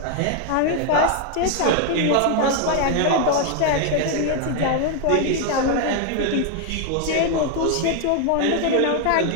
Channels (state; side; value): different; both; correlation 0.00